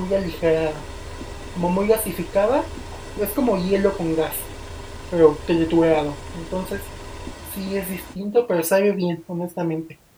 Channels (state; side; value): identical; both; correlation 1.00